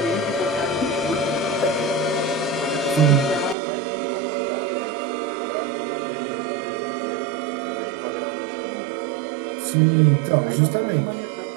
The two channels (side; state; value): left; drops out; at 3.6 s